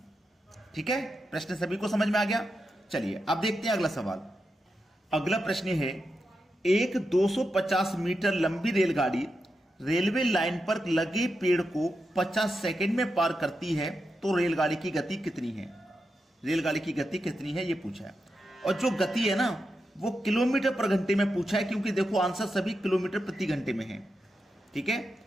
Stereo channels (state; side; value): normal; both; correlation 0.87